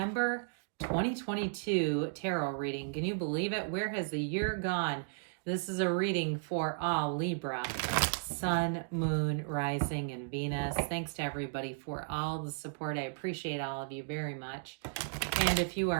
2022 tarot reading. Can you believe it? Where has the year gone? This is a reading for all Libra, Sun, Moon, Rising, and Venus. Thanks to everybody for all the support. I appreciate all of you very much. And if you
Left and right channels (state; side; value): silent; left; digital silence